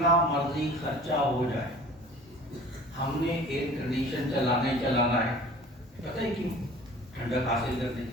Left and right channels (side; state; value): both; normal; correlation 0.45